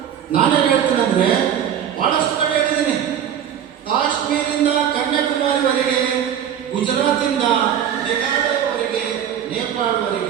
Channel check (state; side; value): quieter; left; 9.3 dB